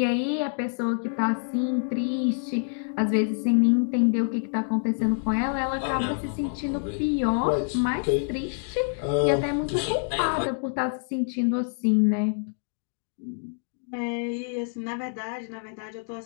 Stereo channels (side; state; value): right; silent; 60 dB below the other